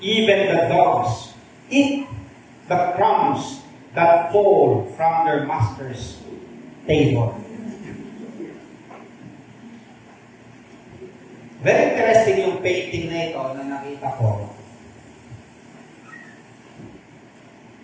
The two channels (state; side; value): identical; both; correlation 1.00